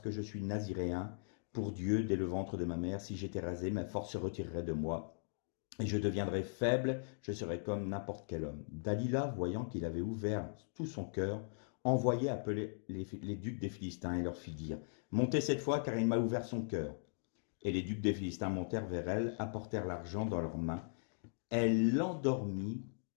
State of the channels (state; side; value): silent; right; digital silence